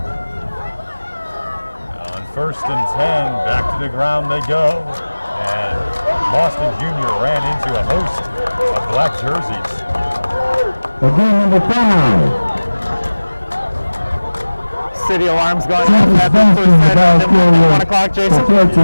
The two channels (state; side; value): inverted; both; correlation -1.00